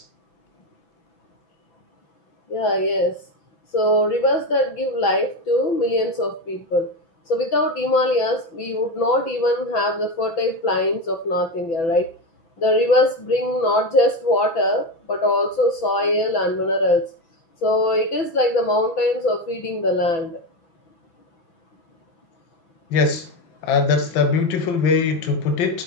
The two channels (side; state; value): right; late; 6.0 ms